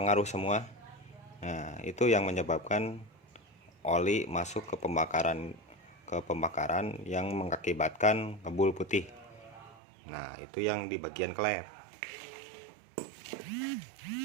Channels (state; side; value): drops out; left; at 9.8 s